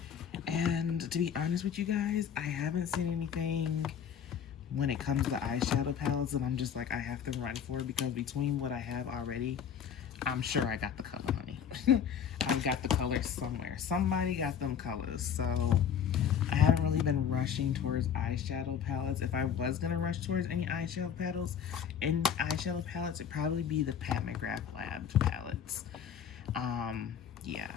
And to be honest with you guys, I haven't seen anything when it comes to eyeshadow palettes and I'm just like, I have to run for it, because between what I have already, I'm sure I got the color, honey. I've got the colors somewhere. Somebody got them colors. So I haven't really been rushing towards eyeshadow palettes. If I was gonna rush towards any eyeshadow palettes, it'd probably be the Pat McGrath Labs palettes. Yeah,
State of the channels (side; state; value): right; quieter; 8.0 dB